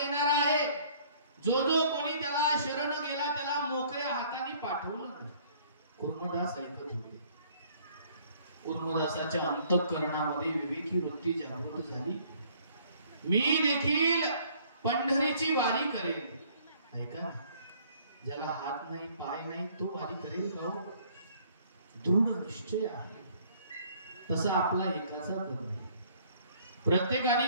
आहे. जो कोणी त्याला शरण गेला त्याला मोकळ्या हाताने पाठवलं नाही. कुर्मदास ऐकत होते. कुर्मदासाच्या अंतःकरणामध्ये विवेकी वृत्ती जागृत झाली. मी देखील पंढरीची वारी करेल. ऐका, ज्याला हात नाही पाय नाही तो वारी करेल का? दृढ निश्चय आहे. तसा आपला एकाचा पण नाही. प्रत्येकाने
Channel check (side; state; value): both; inverted; correlation -0.59